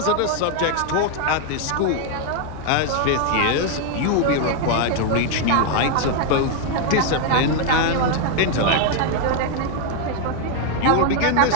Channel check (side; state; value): both; different; correlation 0.01